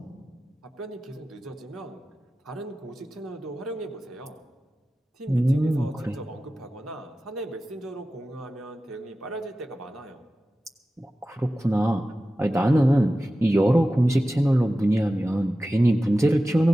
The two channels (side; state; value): both; normal; correlation 0.95